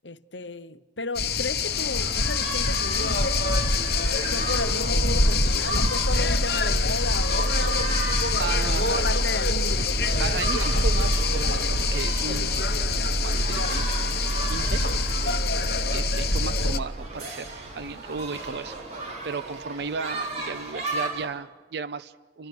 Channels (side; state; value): both; normal; correlation 0.42